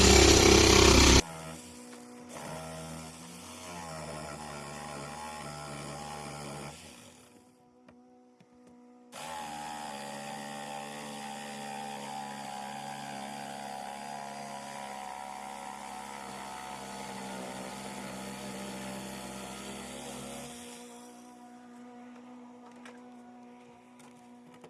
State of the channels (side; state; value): both; identical; correlation 1.00